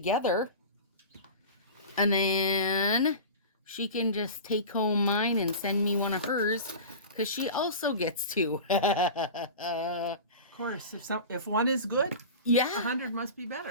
And then she can just take home mine and send me one of hers. Because she also gets 2. Of course. If one is good, yeah, 100 must be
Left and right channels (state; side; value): inverted; both; correlation -0.33